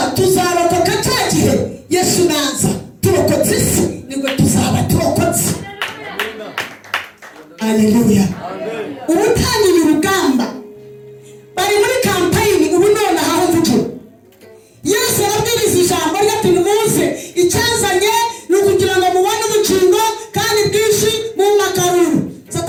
tuzarokoka cya gihe Yesu naza, turokotse isi nibwo tuzaba turokotse. Haleluya. Ubu utangiye urugamba, bari muri kampayini ubu none aho mvugira. Yesu arabwiriza ijambo rye ati nimuze, icyazanye ni ukugira ngo mubone ubugingo kandi bwinshi mu makaruru.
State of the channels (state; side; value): identical; both; correlation 1.00